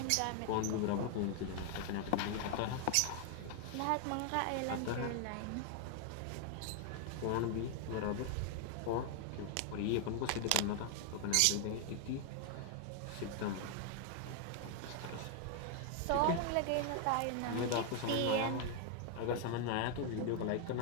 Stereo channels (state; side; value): different; both; correlation 0.00